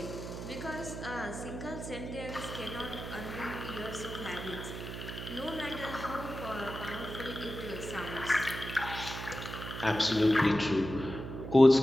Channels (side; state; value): right; noise; hum, 8 dB below the sound